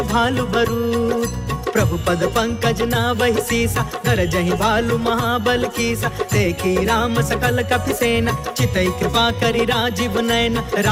भालु बरूथ। प्रभु पद पंकज नावहि सीसा, गरजहि भालु महाबल कीसा। देखी राम सकल कपिसेना, चितई कृपा करि राजीव नयन।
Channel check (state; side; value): identical; both; correlation 1.00